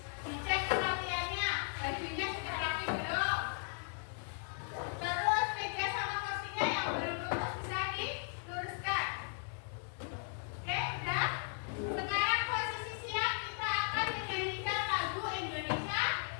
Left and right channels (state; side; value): silent; right; 53 dB below the other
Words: dicek kerapiannya, bajunya sudah rapi belum? Terus meja sama kursinya yang belum lurus bisa diluruskan. Oke, udah? Sekarang posisi siap, kita akan menyanyikan lagu Indonesia